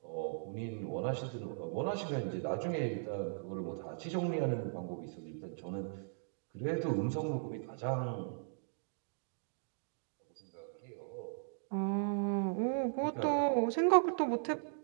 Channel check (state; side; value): silent; left; digital silence